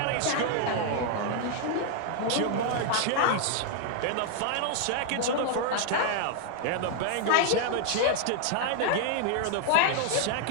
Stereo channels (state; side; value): different; both; correlation 0.00